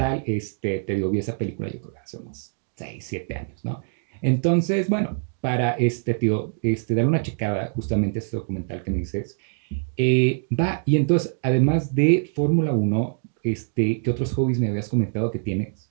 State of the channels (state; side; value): silent; left; digital silence